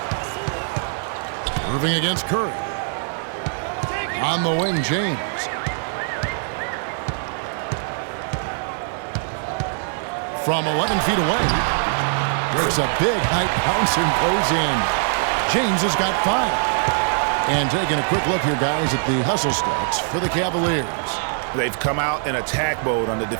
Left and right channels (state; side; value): silent; left; 64 dB below the other